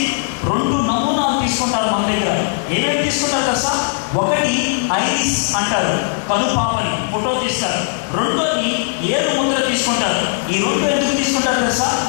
2 నమూనాలు తీసుకుంటారు మన దగ్గర. ఏమేమి తీసుకుంటారు తెలుసా, ఒకటి ఐరిస్ అంటారు, కనుపాపని ఫోటో తీస్తారు. రెండోది ఏడు ముద్ర తీసుకుంటారు. ఈ 2 ఎందుకు తీసుకుంటారు తెలుసా,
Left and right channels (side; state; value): right; silent; 67 dB below the other